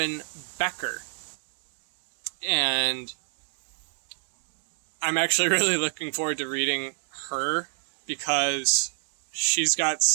Becker. And I'm actually really looking forward to reading her because she's got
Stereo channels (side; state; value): left; silent; digital silence